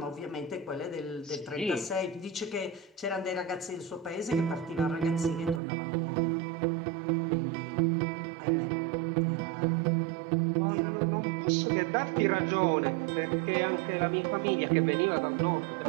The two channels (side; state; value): left; drops out; at 5.6 s